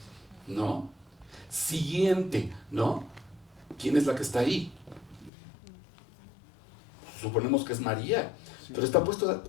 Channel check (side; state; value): right; drops out; at 5.3 s